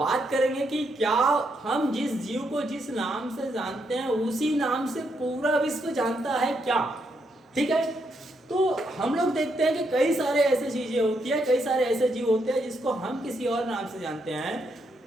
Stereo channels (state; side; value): normal; both; correlation 0.78